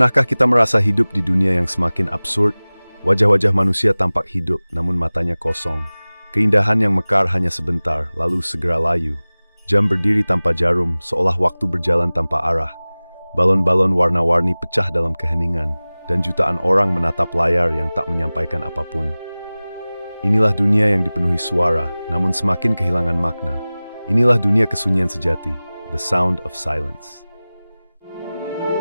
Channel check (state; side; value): inverted; both; correlation -0.99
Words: kita merasa hidup di dunia yang semakin absurd? Wajah-wajah manusia tampak hidup, namun matanya kosong. Keindahan yang mekar hanya sebentar, lalu segera layu. Jam berdiri tanpa jarum, seolah waktu berjalan tanpa arah. Balon-balon warna-warni pecah dalam keheningan, dan jutaan orang menatap layar yang tak menyampaikan apapun. Inilah dunia yang dipenuhi suara, namun semakin kehilangan makna. Inilah dunia kesunyian sejati, the sound of silence.